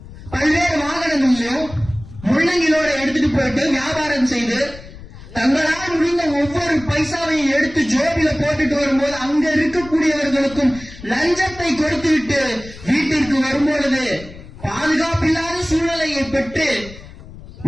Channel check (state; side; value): noise; left; rumble, 17 dB below the sound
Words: பல்வேறு வாகனங்களிலும் முள்ளங்கிலோட எடுத்துட்டு போயிட்டு வியாபாரம் செய்து தங்களால் முடிந்த ஒவ்வொரு பைசாவையும் எடுத்து ஜோபில போட்டுட்டு வரும்போது அங்க இருக்கக்கூடியவர்களுக்கும் லஞ்சத்தை கொடுத்துவிட்டு வீட்டிற்கு வரும்பொழுது பாதுகாப்பில்லாத சூழ்நிலையை பெற்று